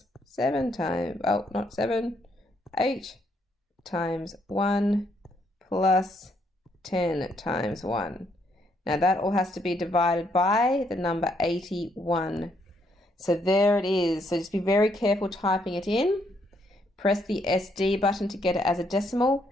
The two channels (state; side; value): normal; both; correlation 0.73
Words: 7 times, oh, not 7, 8 times 1 plus 10 times 1. Now that all has to be divided by the number 81. So there it is. So just be very careful typing it in. Press the SD button to get it as a decimal,